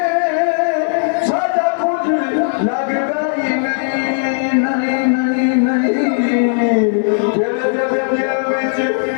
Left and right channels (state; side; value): silent; right; digital silence